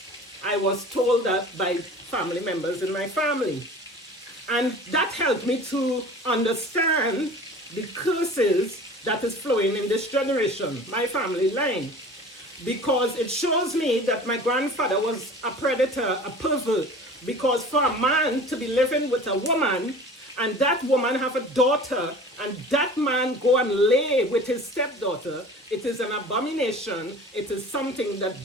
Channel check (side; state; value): both; normal; correlation 0.41